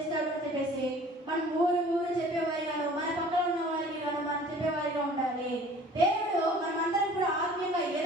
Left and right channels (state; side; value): normal; both; correlation 0.49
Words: అని చెప్పేసి మనం ఊరు చెప్పేవారిగాను, మన పక్కన ఉన్న వారికి గాను మనం చెప్పేవారిగా ఉండాలి. దేవుడు మనమందరం కూడా ఆత్మీయంగా